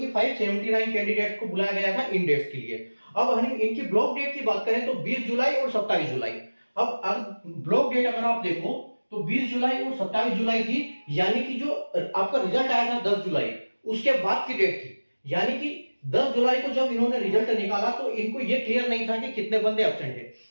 579 कैंडिडेट को बुलाया गया था इन डेट्स के लिए। अब हम इनकी ब्लॉक डेट की बात करें तो 20 जुलाई और 27 जुलाई। अब ब्लॉक डेट अगर आप देखो तो 20 जुलाई और 27 जुलाई थी, यानी कि जो आपका रिजल्ट आया था 10 जुलाई, उसके बाद की डेट थी, यानी कि 10 जुलाई को जब इन्होंने रिजल्ट निकाला तो इनको ये क्लियर नहीं था कि कितने बंदे एब्सेंट हैं।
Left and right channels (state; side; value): inverted; both; correlation -1.00